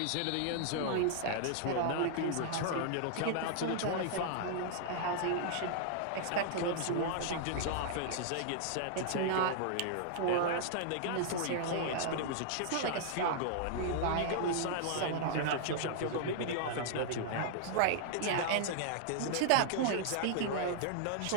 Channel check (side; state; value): both; different; correlation -0.01